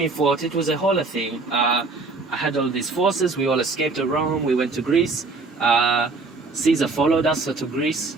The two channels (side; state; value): left; quieter; 3.9 dB